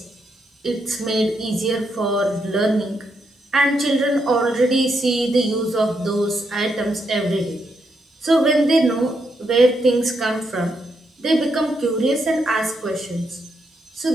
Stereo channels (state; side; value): normal; both; correlation 0.80